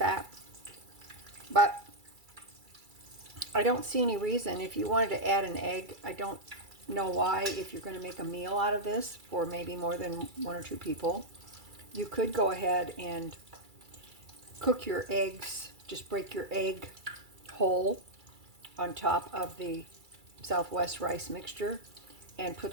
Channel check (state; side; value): late; left; 2.3 ms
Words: but I don't see any reason. If you wanted to add an egg, I don't know why. If you're going to make a meal out of this for maybe more than one or two people, you could go ahead and cook your eggs. Just break your egg whole on top of the Southwest rice mixture and put